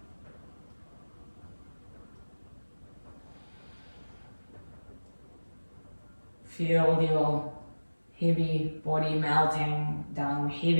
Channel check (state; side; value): inverted; both; correlation -1.00